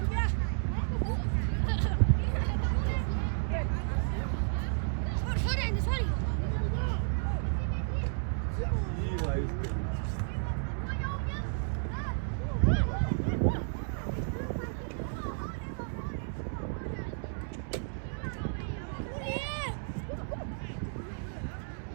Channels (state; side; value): silent; left; digital silence